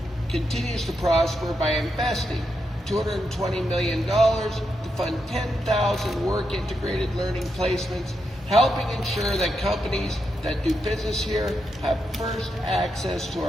continues to prosper by investing $220 million to fund 10,000 work-integrated learning placements, helping ensure that companies that do business here have first access to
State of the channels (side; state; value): both; normal; correlation 0.83